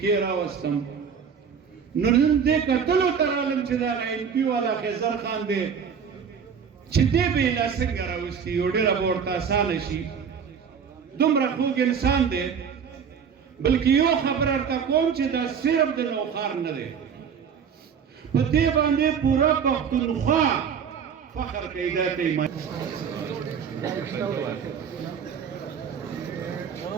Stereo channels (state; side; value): quieter; left; 7.0 dB